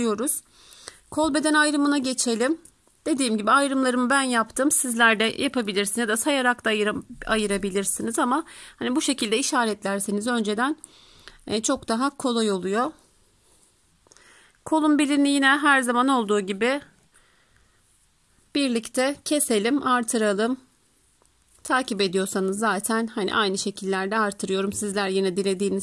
Kol beden ayrımına geçelim. Dediğim gibi ayrımlarımı ben yaptım. Sizler de yapabilirsiniz ya da sayarak da ayırabilirsiniz ama hani bu şekilde işaretlerseniz önceden çok daha kolay oluyor. Kolun belini yine her zaman olduğu gibi birlikte keselim, artıralım. Takip ediyorsanız zaten hani aynı şekillerde artırıyorum. Sizler yine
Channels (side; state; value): both; identical; correlation 1.00